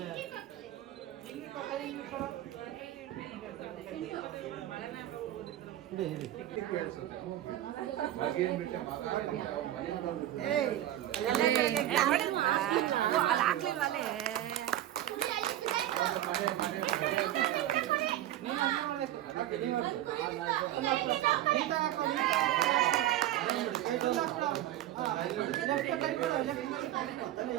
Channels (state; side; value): quieter; left; 13.3 dB